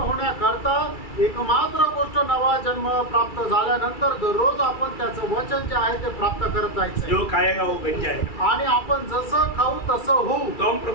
एकमात्र गोष्ट नवा जन्म प्राप्त झाल्यानंतर दररोज आपण त्याचं वचन जे आहे ते प्राप्त करत जायचं। जो खाएगा वो बन जाएगा। आणि आपण जसं खाऊ तसं होऊ। तो हम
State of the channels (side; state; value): right; late; 2.3 ms